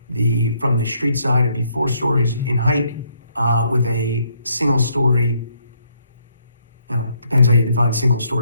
From the street side, it'd be 4 stories in height with a single story depends how you define single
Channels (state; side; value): inverted; both; correlation -0.71